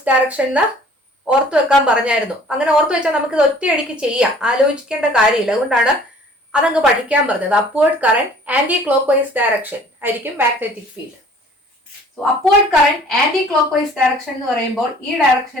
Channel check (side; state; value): both; normal; correlation 0.52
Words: ഡയറക്ഷൻ ഓർത്തു വെക്കാൻ പറഞ്ഞായിരുന്നു. അങ്ങനെ ഓർത്തു വെച്ചാൽ നമുക്ക് ഇത് ഒറ്റയടിക്ക് ചെയ്യാം, ആലോചിക്കേണ്ട കാര്യമില്ല. അതുകൊണ്ടാണ് അതങ്ങ് പഠിക്കാൻ പറഞ്ഞത്. Upward current anti clock vice direction ആയിരിക്കും magnetic field. So upward current anti clock vice direction എന്ന് പറയുമ്പോൾ ഈ